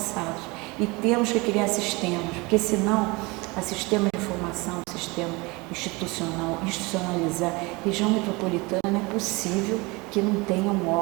E temos que criar sistemas, porque senão, a sistema de informação, sistema institucionalizar, região metropolitana é possível que não tenha um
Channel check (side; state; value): left; quieter; 25.2 dB